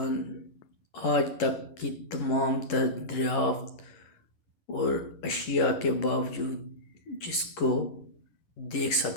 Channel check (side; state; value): right; late; 11 ms